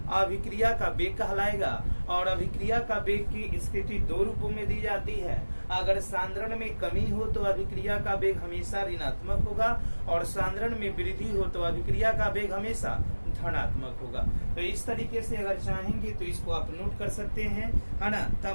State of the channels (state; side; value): inverted; both; correlation -1.00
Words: अभिक्रिया का वेग कहलाएगा। और अभिक्रिया का वेग की स्थिति दो रूपों में दी जाती है। अगर सांद्रण में कमी हो तो अभिक्रिया का वेग हमेशा ऋणात्मक होगा, और सांद्रण में वृद्धि हो तो अभिक्रिया का वेग हमेशा धनात्मक होगा। तो इस तरीके से अगर चाहेंगे तो इसको आप नोट कर सकते हैं, है ना।